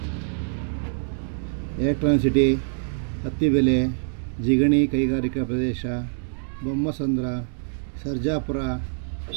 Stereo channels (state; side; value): silent; left; digital silence